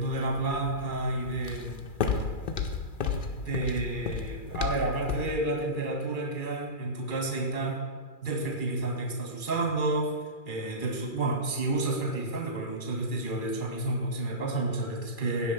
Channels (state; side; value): late; right; 2.4 ms